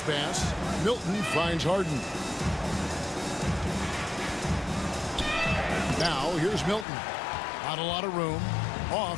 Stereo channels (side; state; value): right; drops out; at 6.9 s